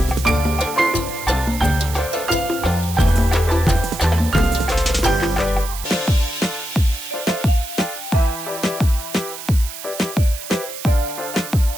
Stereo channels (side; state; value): right; noise; hiss, 11 dB below the sound